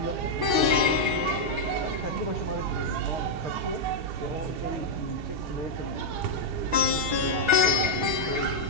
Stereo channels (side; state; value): left; late; 6.1 ms